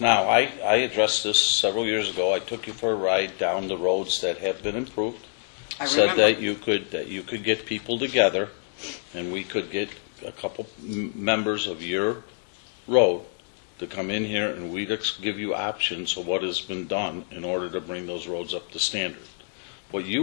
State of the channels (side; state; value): right; silent; digital silence